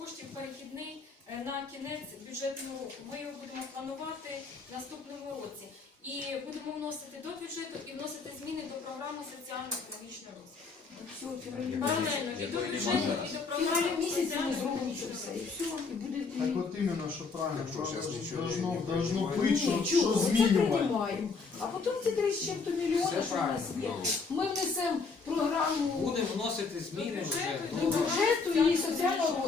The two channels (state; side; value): quieter; right; 4.6 dB